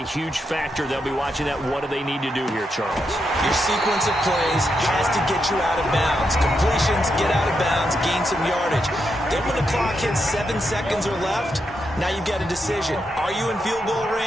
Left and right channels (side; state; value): both; normal; correlation 0.83